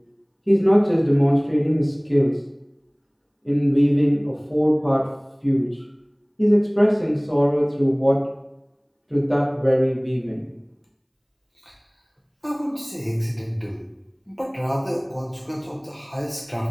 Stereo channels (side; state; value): both; identical; correlation 1.00